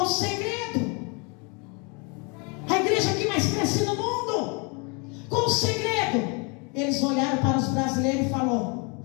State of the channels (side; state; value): right; quieter; 32.4 dB